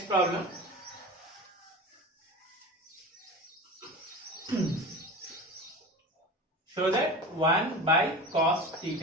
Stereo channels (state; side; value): normal; both; correlation 0.31